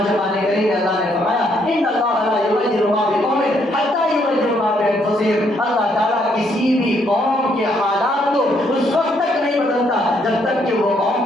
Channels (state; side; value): normal; both; correlation 0.71